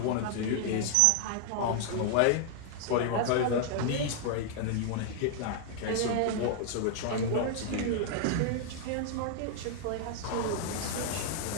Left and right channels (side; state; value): both; different; correlation 0.00